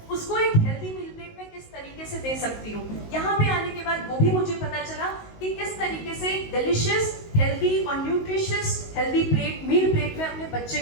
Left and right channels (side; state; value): right; late; 19 ms